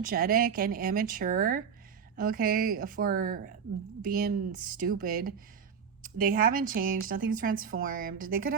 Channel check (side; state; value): left; quieter; 6.9 dB